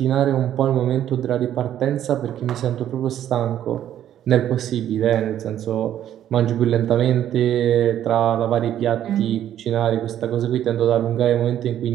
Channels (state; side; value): quieter; left; 11.1 dB